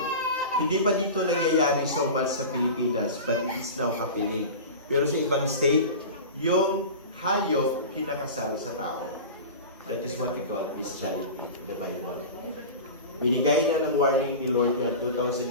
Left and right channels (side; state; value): both; inverted; correlation -0.31